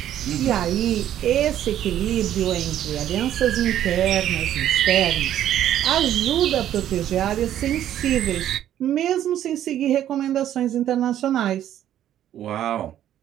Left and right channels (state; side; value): quieter; left; 11.5 dB